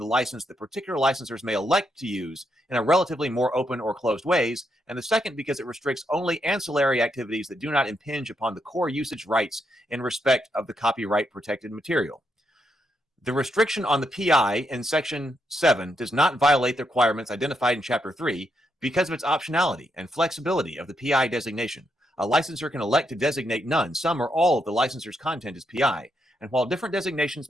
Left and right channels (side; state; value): both; normal; correlation 0.80